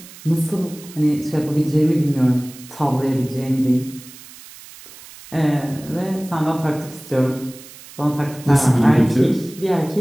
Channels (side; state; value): right; noise; hiss, 19 dB below the sound